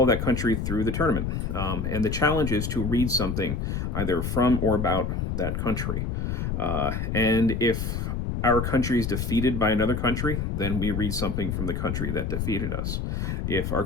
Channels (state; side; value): noise; left; rumble, 2 dB below the sound